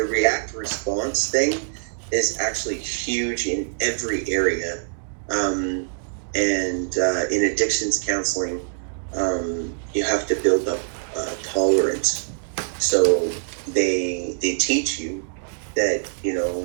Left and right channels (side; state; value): left; silent; digital silence